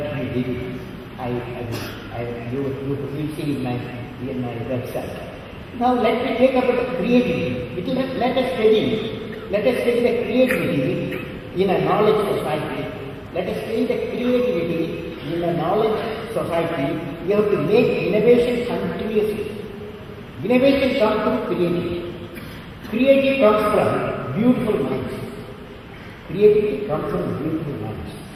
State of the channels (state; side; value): identical; both; correlation 1.00